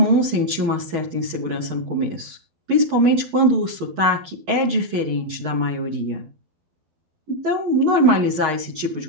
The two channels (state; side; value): late; left; 12 ms